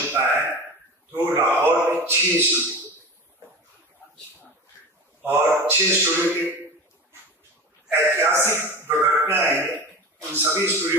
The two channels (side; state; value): both; normal; correlation 0.31